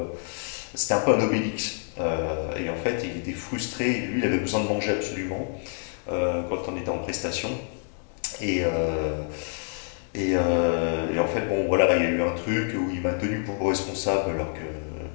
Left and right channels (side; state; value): right; silent; 59 dB below the other